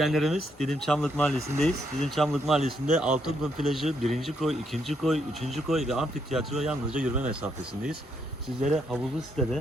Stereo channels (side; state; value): both; normal; correlation 0.75